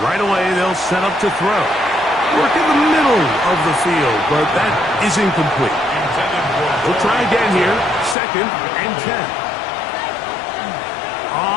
Right away, they'll set up to throw. Work in the middle of the field, but that is incomplete. We'll try again here. Second and 10.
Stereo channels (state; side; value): drops out; right; at 8.2 s